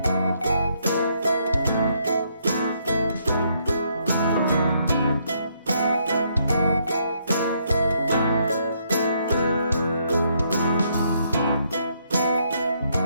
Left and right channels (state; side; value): inverted; both; correlation -0.73